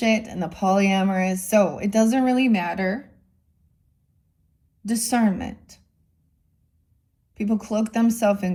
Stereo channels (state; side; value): identical; both; correlation 1.00